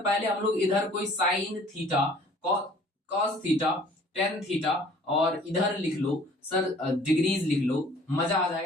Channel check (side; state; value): both; normal; correlation 0.53